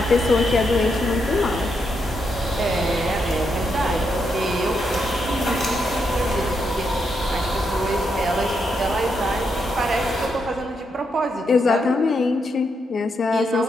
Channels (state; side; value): normal; both; correlation 0.81